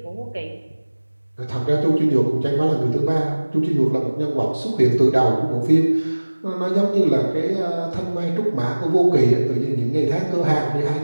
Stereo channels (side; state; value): both; inverted; correlation -1.00